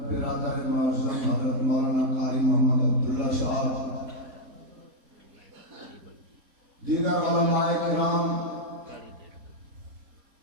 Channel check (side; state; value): left; late; 4.1 ms